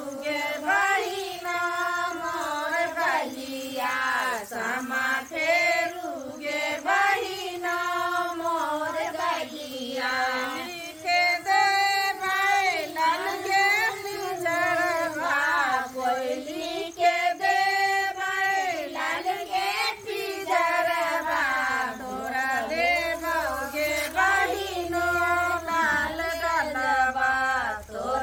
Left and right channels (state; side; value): identical; both; correlation 1.00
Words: बहिना मोर बलिया समा फेरुगे बहिना मोर बलिया लिखे दे बैलन के पिंजरवा कोयली के दे बैलन के पिंजरवा तोरा देबोगे बहिनो लाल गलबा